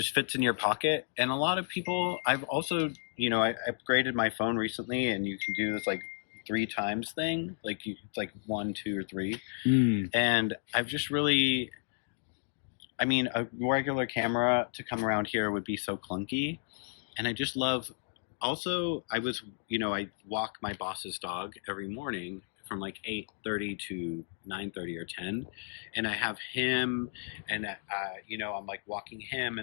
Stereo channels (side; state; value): right; silent; digital silence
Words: fits in your pocket. And a lot of people, I've also, you know, I upgraded my phone recently, and you can do this like 3 times thing. Like it's like 1, 2, or 3. And I've just really, I mean, a regular camera to come around here would be so clunky. And I just love, also, I walk my boss's dog every morning from like 8:30 to 9:30 or 10. And I have him, and I'm like walking him.